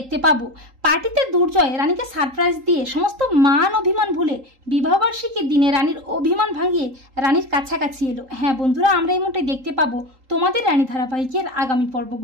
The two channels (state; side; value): late; left; 3.8 ms